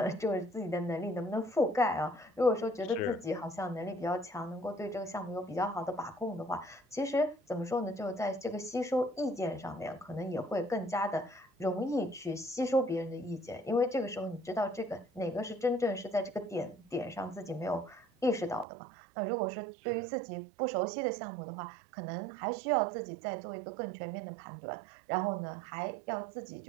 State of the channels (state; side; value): drops out; left; at 18.7 s